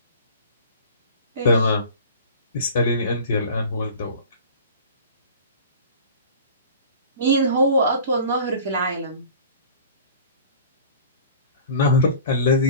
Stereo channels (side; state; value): both; inverted; correlation -0.41